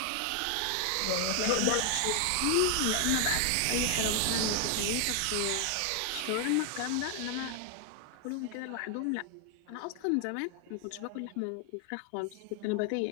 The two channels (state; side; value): different; both; correlation 0.00